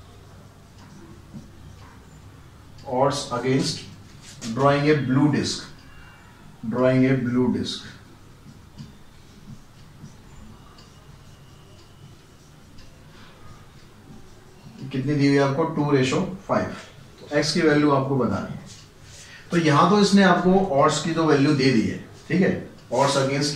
drawing a blue disc, कितनी दी हुई है आपको 2:5। तो x की वैल्यू आपको बतानी है। तो यहां तो इसने आपको ऑड्स की तो वैल्यू दे दी है, ठीक है, ऑड्स अगेंस्ट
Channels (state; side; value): identical; both; correlation 1.00